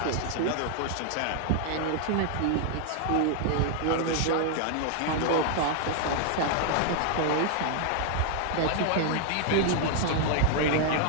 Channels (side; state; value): both; different; correlation 0.00